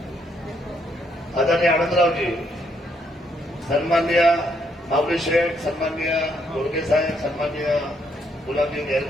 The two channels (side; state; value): both; normal; correlation 0.73